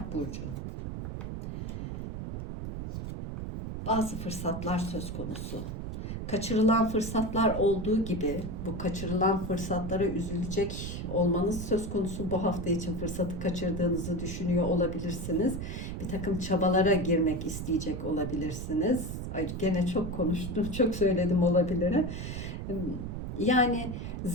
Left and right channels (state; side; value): noise; right; rumble, 5 dB below the sound